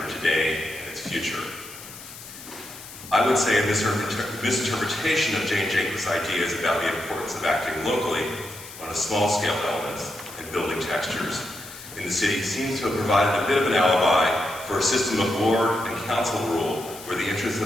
today and its future. I would say a misinterpretation of Jane Jacobs' ideas about the importance of acting locally on a small-scale elements and building textures in the city seems to have provided a bit of an alibi for a system of ward and council rule where the interests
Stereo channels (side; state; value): left; noise; hiss, 15 dB below the sound